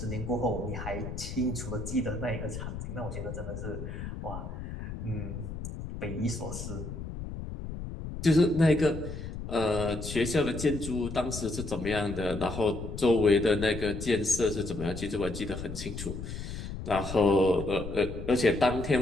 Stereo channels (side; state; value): left; noise; rumble, 8 dB below the sound